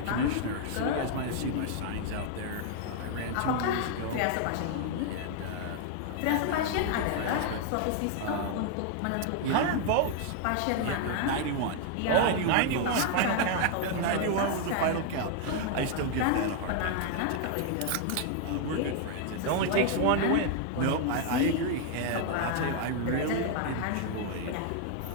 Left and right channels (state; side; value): different; both; correlation 0.00